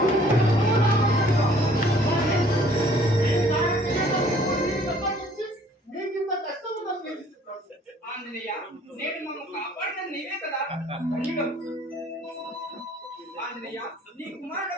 మీకింత కష్టం ఉన్నది. ఆంజనేయ, నేడు మమ్మ కాపాడిన నీవే కదా. ధన్యుడవు. ఆంజనేయ, నీ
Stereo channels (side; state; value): both; normal; correlation 0.57